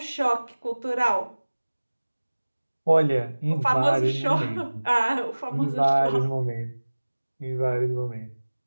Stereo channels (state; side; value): inverted; both; correlation -1.00